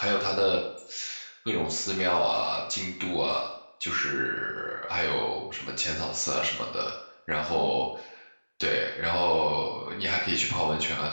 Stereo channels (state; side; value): inverted; both; correlation -1.00